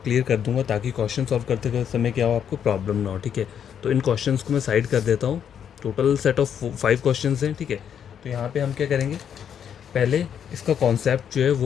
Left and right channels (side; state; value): right; quieter; 8.5 dB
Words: क्लियर कर दूंगा ताकि क्वेश्चन सॉल्व करते समय क्या हो, आपको प्रॉब्लम ना हो। ठीक है, तो इन क्वेश्चंस को मैं साइड कर देता हूँ। टोटल सेट ऑफ 5 क्वेश्चन हैं। ठीक है, तो यहाँ पर हम क्या करेंगे, पहले इसका कॉन्सेप्ट जो है